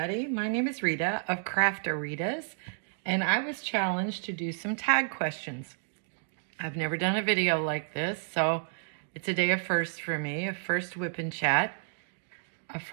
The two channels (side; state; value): left; silent; digital silence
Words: my name is Rita of Craft-A-Ritas, and I was challenged to do some tag questions. I've never done a video like this, so it's a day of firsts for me, a first whip and chat, a